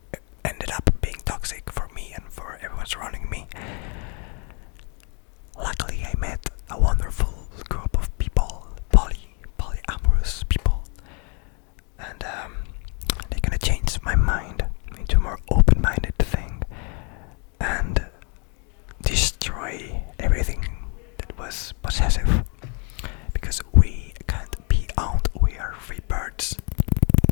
up being toxic for me and for everyone surrounding me. Luckily, I met a wonderful group of people, polyamorous people, and they're gonna change my mind into a more open-minded thing and destroy everything that was possessive, because we can't be owned. We are free birds.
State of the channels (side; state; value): right; quieter; 36.7 dB